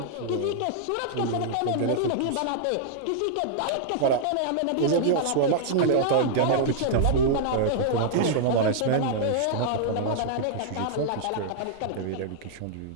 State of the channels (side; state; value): both; different; correlation -0.01